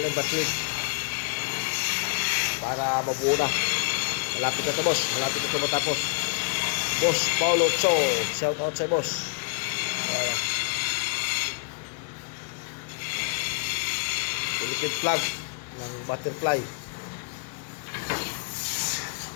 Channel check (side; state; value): right; quieter; 37.4 dB